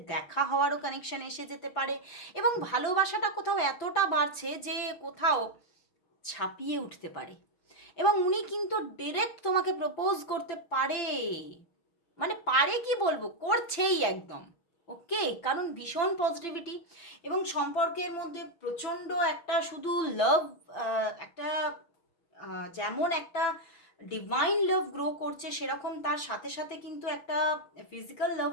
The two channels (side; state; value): right; late; 6.3 ms